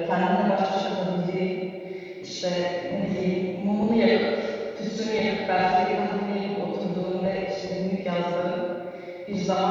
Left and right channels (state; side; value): identical; both; correlation 1.00